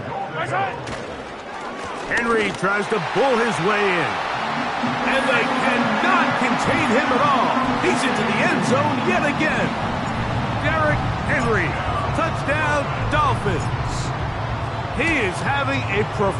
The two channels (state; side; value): identical; both; correlation 1.00